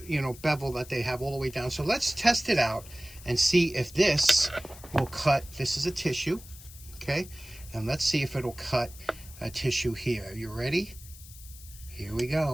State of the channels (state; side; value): noise; left; hiss, 18 dB below the sound